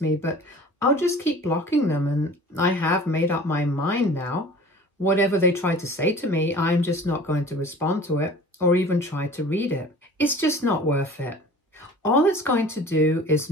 me, but I'll just keep blocking them, and I have made up my mind now. Whatever they try to say to me, I'm just not going to respond to it or even try to read it. It's just not worth it. All it's going to do is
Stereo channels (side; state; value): both; normal; correlation 0.43